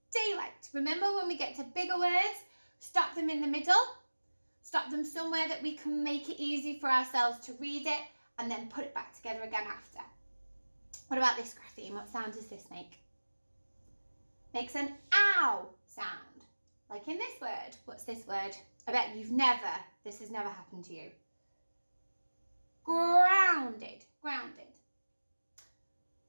Daylight. Remember, when we get to bigger words, stop them in the middle. Stop them somewhere that we can make it easy for ourselves to read it and then put it back together again after. What about this grapheme? What sound does this make? Makes an ow sound. Like in this word. What's this word? I bet this has never happened to you. Grounded. Grounded.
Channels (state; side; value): inverted; both; correlation -1.00